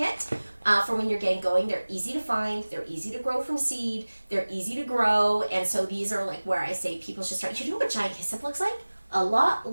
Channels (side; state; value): both; inverted; correlation -1.00